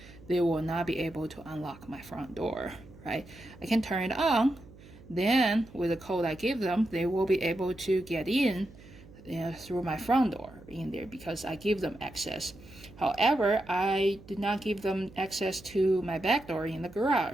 they will not be able to unlock my front door, right? I can turn it on, then with the code I give them, they will be able to get in through my front door in there because I give them access. However, I did not give them access to my back door in the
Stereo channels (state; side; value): noise; right; hum, 21 dB below the sound